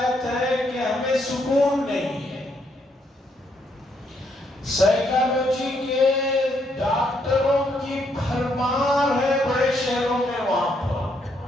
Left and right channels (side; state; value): both; normal; correlation 0.74